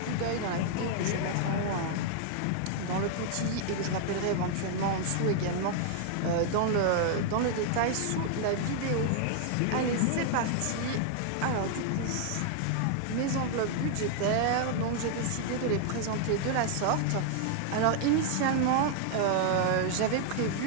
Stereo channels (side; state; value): both; different; correlation 0.00